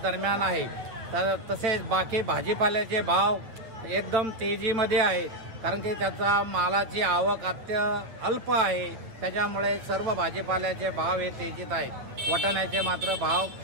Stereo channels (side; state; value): left; late; 8.6 ms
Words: दरम्यान आहे. तसेच बाकी भाजीपाल्याचे भाव एकदम तेजीमध्ये आहेत, कारण की त्याचा मालाची आवक अल्प आहे. त्याच्यामुळे सर्व भाजीपाल्याचे भाव हे तेजीत आहेत. वाटाण्याचे मात्र भाव